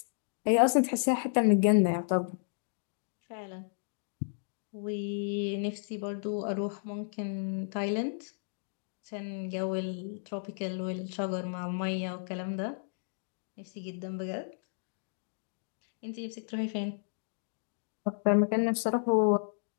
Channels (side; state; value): right; silent; digital silence